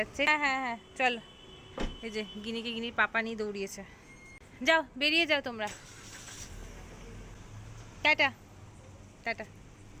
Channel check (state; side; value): identical; both; correlation 1.00